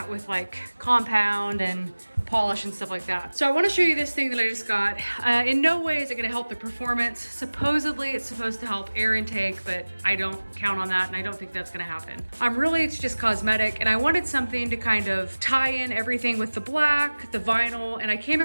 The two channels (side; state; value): both; inverted; correlation -1.00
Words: with like compound and polish and stuff like that. So I want to show you this thing that I just got. In no way is it going to help the performance. Supposedly it's supposed to help air intake, but I don't count on that and I don't think that's going to happen. Really, it's just cosmetic, and I wanted something to kind of tie in everything with the black, the vinyl, and I came